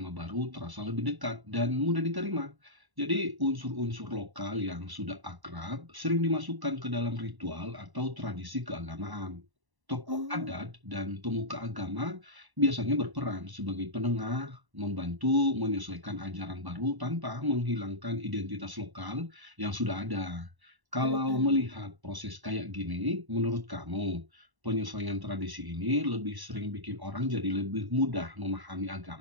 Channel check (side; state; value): left; late; 1.0 ms